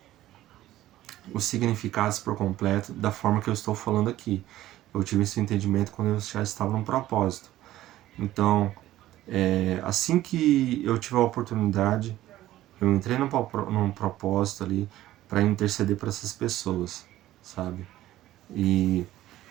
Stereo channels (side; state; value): left; quieter; 14.6 dB